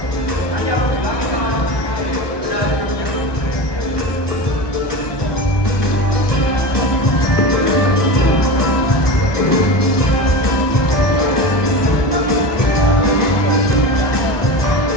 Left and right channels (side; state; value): right; late; 1.2 ms